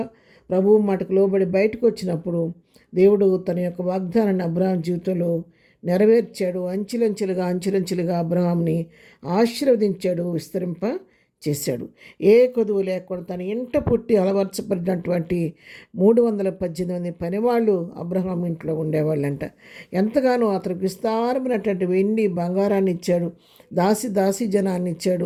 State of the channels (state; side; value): identical; both; correlation 1.00